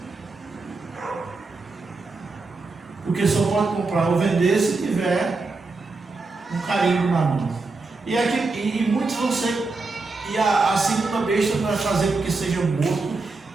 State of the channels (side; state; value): left; quieter; 3.7 dB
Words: Porque só pode comprar ou vender se tiver um carimbo na mão. E muitos vão ser, e a segunda besta vai fazer com que seja morto